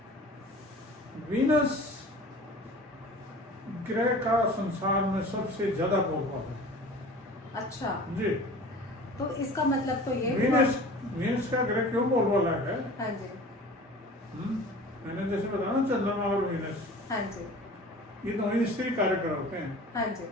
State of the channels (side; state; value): both; normal; correlation 0.42